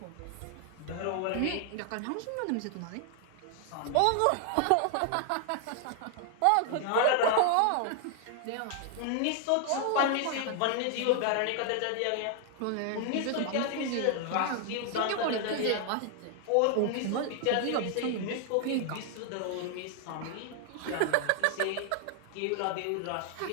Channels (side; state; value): both; different; correlation 0.00